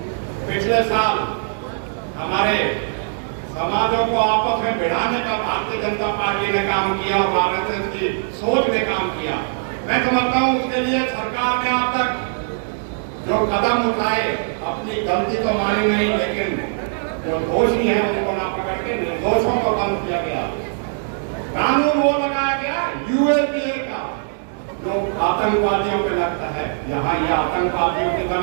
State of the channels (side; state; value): left; silent; digital silence